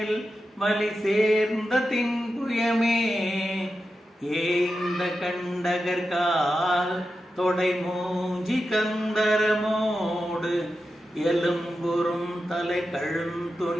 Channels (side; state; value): both; normal; correlation 0.90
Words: வலி சேர்ந்த தின்புயமே ஏய்ந்த கண்டகர்கால் தொடை மூஞ்சி கந்தரமோடு எலும்புறும் தலை